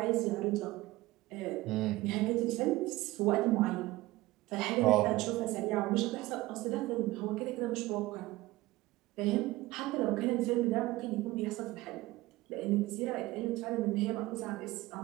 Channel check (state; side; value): quieter; left; 18.8 dB